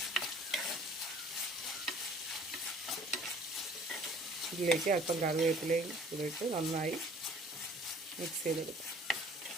ഇതിലേക്ക് അല്പം കറിവേപ്പിലയും ഇട്ട് നന്നായി മിക്സ് ചെയ്തെടുക്കാം.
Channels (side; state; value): both; normal; correlation 0.53